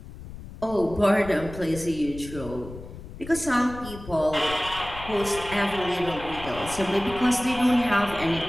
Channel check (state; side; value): noise; left; rumble, 14 dB below the sound